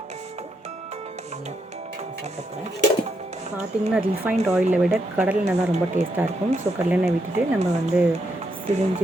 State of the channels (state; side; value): normal; both; correlation 0.79